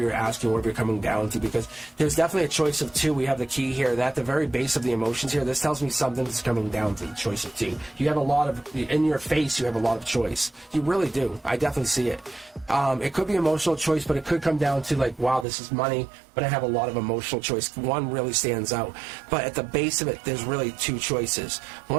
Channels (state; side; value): drops out; left; at 15.5 s